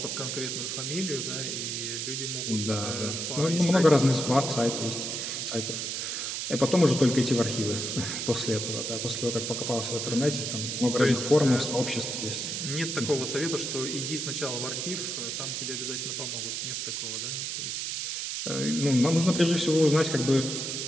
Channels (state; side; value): noise; right; hiss, 3 dB below the sound